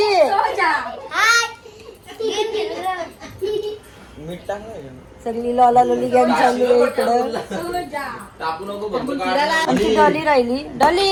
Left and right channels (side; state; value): both; identical; correlation 1.00